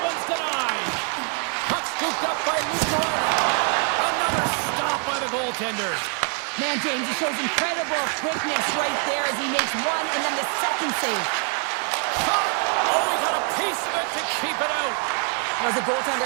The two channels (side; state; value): left; quieter; 39.5 dB